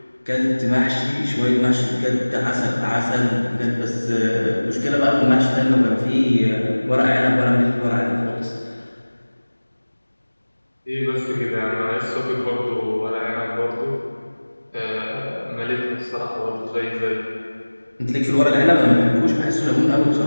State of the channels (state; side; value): inverted; both; correlation -1.00